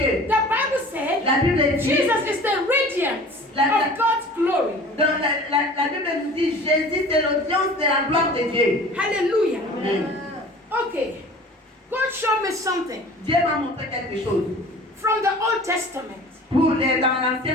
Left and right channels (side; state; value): both; normal; correlation 0.43